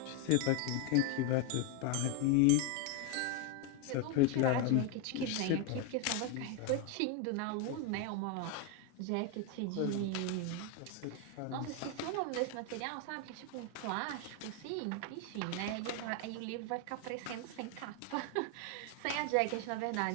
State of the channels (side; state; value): both; different; correlation 0.01